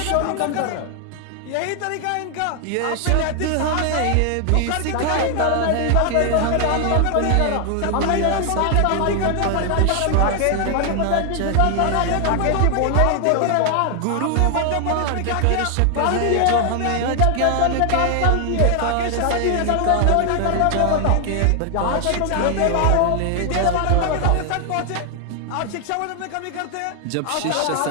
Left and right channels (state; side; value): different; both; correlation 0.00